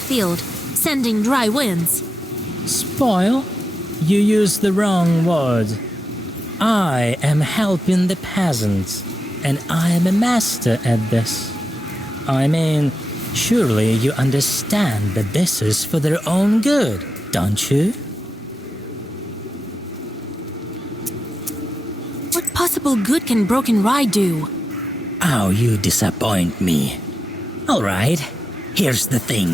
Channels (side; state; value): both; normal; correlation 0.89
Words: sending dry winds? Spoil? You use the wrong word. I am helping the peasants, and I am a master at this. I mean, surely you understand that this is for their own good, don't you? What possible good can broken rye do? Oh, you disappoint me. All right, here's the